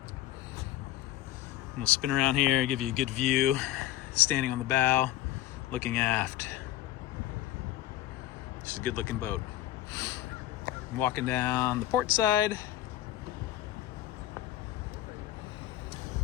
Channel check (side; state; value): right; quieter; 14.0 dB